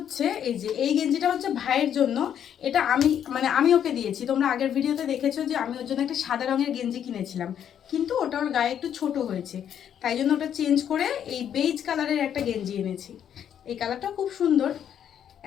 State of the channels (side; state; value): right; quieter; 9.3 dB